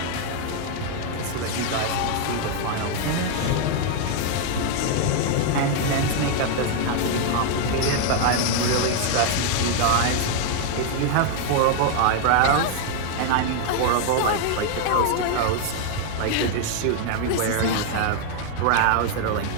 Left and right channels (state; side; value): different; both; correlation 0.00